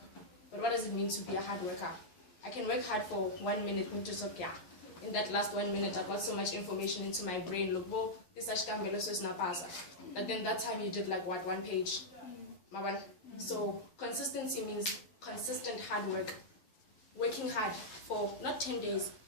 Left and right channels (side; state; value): right; late; 11 ms